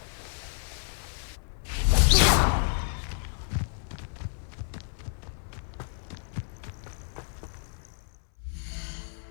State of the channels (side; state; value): right; silent; 58 dB below the other